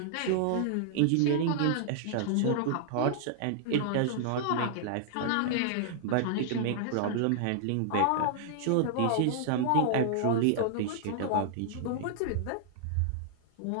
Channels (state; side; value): different; both; correlation -0.01